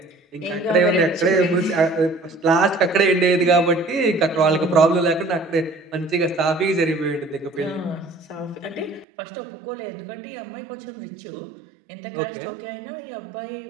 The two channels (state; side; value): drops out; left; at 9.1 s